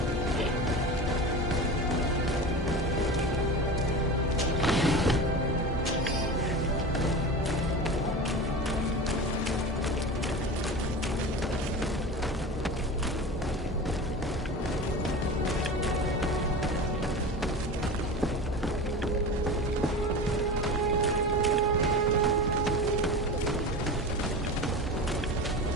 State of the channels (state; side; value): normal; both; correlation 0.29